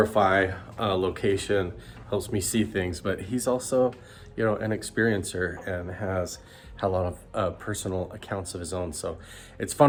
location, helps me see things. But he's also, you know, an experiencer and has a lot of personal accounts of his own. So it's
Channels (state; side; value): identical; both; correlation 1.00